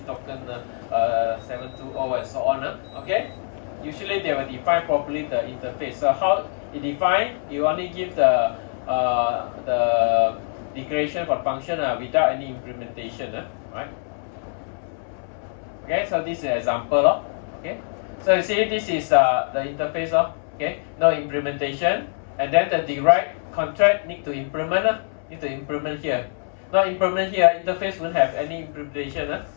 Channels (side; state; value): right; silent; 63 dB below the other